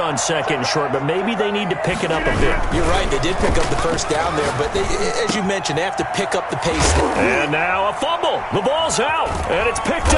2nd and short, but maybe they need to pick it up a bit. You're right. They did pick up the first down there, but they, as you mentioned, they have to pick up the pace. And now a fumble. The ball's out, and it's picked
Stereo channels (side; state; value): both; identical; correlation 1.00